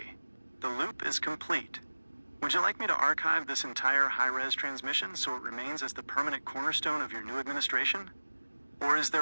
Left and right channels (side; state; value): both; inverted; correlation -1.00